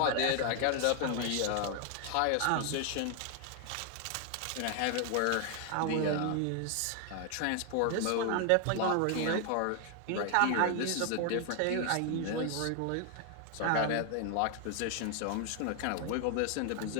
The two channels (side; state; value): both; different; correlation 0.00